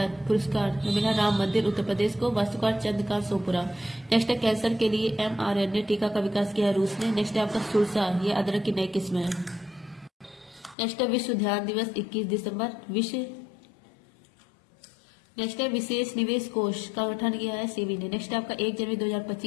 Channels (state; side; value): drops out; right; at 10.8 s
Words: पुरस्कार मिला राम मंदिर उत्तर प्रदेश को, वास्तुकार चंद्रकांत सोपुरा। नेक्स्ट है कैंसर के लिए mRNA टीका का विकास किया है रूस ने। नेक्स्ट है आपका सुरसा, ये अदरक की नई किस्म है। नेक्स्ट है विश्व ध्यान दिवस 21 दिसंबर। नेक्स्ट है विशेष निवेश कोष का गठन किया है सेबी ने। नेक्स्ट है आपका 1 जनवरी